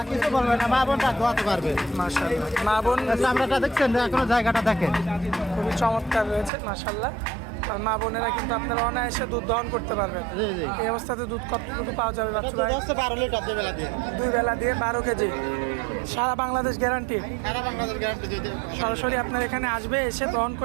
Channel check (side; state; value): left; drops out; at 6.5 s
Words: কিছু বলবে না, মা বোনটা ধোয়াতে পারবে। মাশাআল্লাহ, মা বোন চামড়াটা দেখছেন, এখনো জায়গাটা দেখেন। খুবই চমৎকার রয়েছে মাশাআল্লাহ। আর মা বোনেরা কিন্তু আপনারা অনায়াসে দুধ দহন করতে পারবেন। জি, জি। এই অবস্থাতে দুধ কতটুকু পাওয়া যাবে বাচ্চা ভাই? 12 লিটার দুই বেলা দিয়ে। 2 বেলা দিয়ে 12 কেজি, সারা বাংলাদেশ গ্যারান্টি। সারা বাংলাদেশ গ্যারান্টি দিতে। সরাসরি আপনার এখানে আসবে, এসে দহন